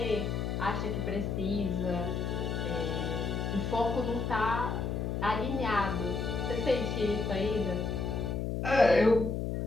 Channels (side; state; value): left; noise; hum, 1 dB below the sound